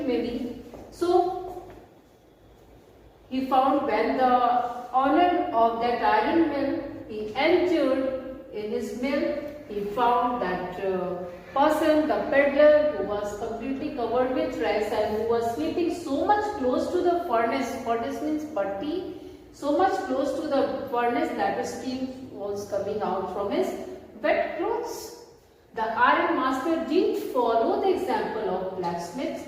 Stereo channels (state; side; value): identical; both; correlation 1.00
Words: maybe. So he found when the owner of that iron mill, he entered in his mill, he found that person, the peddler, who was completely covered with rags and who was sleeping so much close to the furnace. Furnace means bhatti. So much close to the furnace that the steam was coming out from his wet clothes. The iron master didn't follow the example of blacksmith,